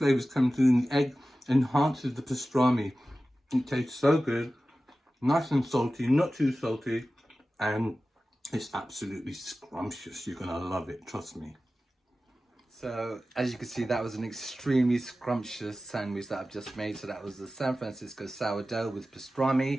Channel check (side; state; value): both; normal; correlation 0.95